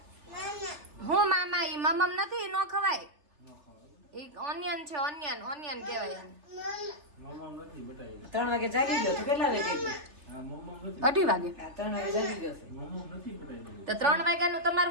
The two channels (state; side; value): late; left; 3.3 ms